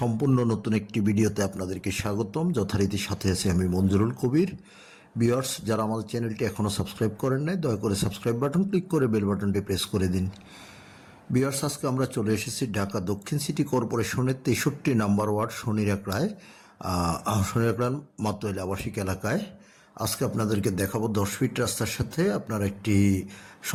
নতুন একটি ভিডিওতে আপনাদেরকে স্বাগতম। যথারীতি সাথে আছি আমি মঞ্জুরুল কবির। ভিউয়ার্স, যারা আমাদের চ্যানেলটি এখনও সাবস্ক্রাইব করেন নাই, দয়া করে সাবস্ক্রাইব বাটন ক্লিক করে বেল বাটনটি প্রেস করে দিন। ভিউয়ার্স, আজকে আমরা চলে এসেছি ঢাকা দক্ষিণ সিটি কর্পোরেশনের 63 নম্বর ওয়ার্ড শনিরাকড়ায়, মাতোয়াইল আবাসিক এলাকায়। আজকে আপনাদেরকে দেখাবো 10 ফিট রাস্তার সাথে আপনার একটি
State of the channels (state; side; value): identical; both; correlation 1.00